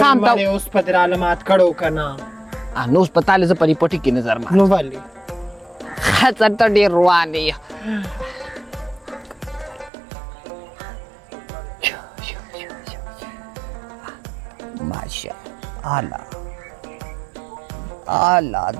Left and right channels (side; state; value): left; drops out; at 9.9 s